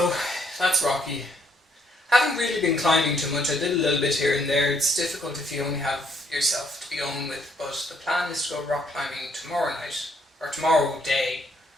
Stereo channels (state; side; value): normal; both; correlation 0.70